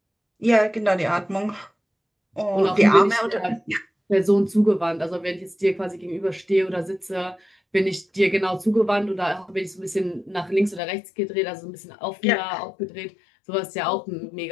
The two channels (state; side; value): drops out; right; at 10.8 s